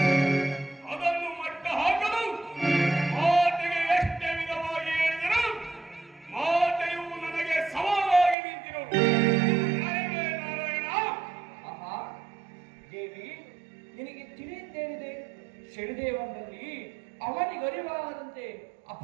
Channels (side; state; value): left; drops out; at 8.3 s